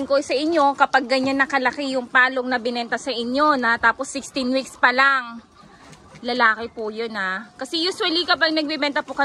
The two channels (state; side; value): identical; both; correlation 1.00